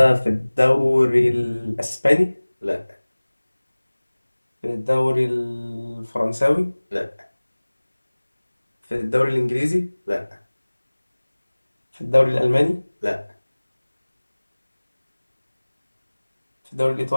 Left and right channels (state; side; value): inverted; both; correlation -1.00